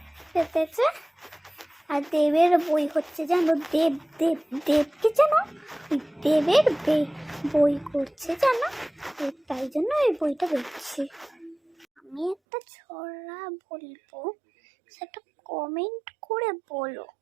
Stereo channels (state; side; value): drops out; left; at 12.4 s